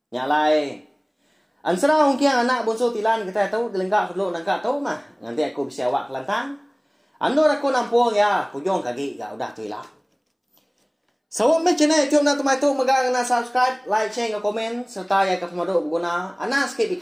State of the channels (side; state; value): both; identical; correlation 1.00